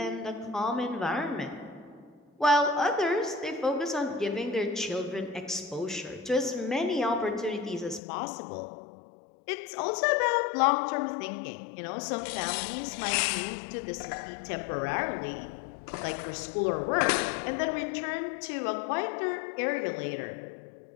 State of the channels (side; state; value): right; drops out; at 8.0 s